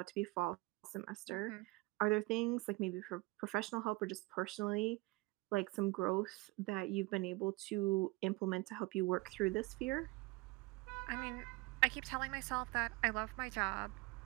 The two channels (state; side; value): quieter; left; 22.5 dB